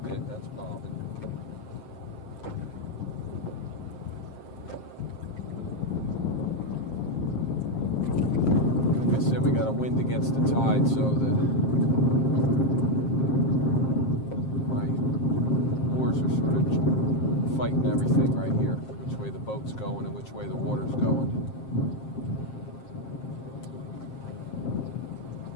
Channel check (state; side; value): late; right; 7.5 ms